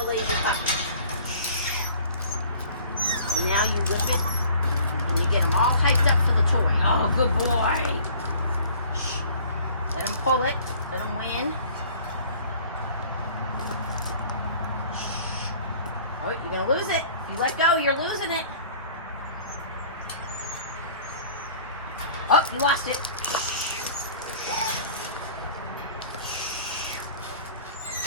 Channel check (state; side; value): inverted; both; correlation -0.50